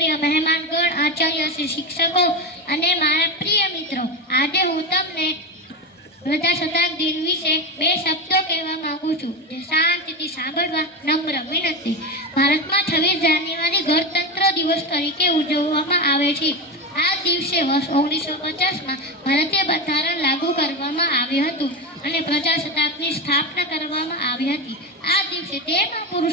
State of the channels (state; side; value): normal; both; correlation 0.17